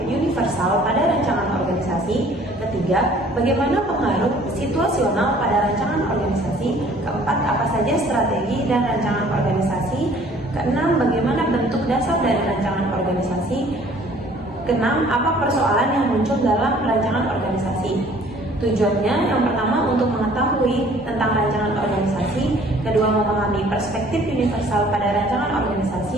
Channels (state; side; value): normal; both; correlation 0.55